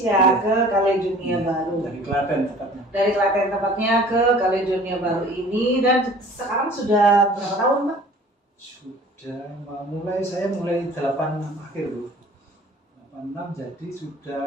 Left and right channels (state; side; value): normal; both; correlation 0.48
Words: ke Kaledonia Baru. Dari Klaten tepatnya. Dari Klaten tepatnya ke Kaledonia Baru ini, dan sekarang sudah berapa tahun, Pak? Sudah saya mulai 86 akhir loh. 86 jadi